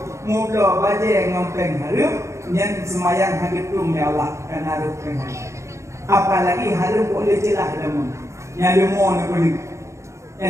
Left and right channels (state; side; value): late; left; 0.14 ms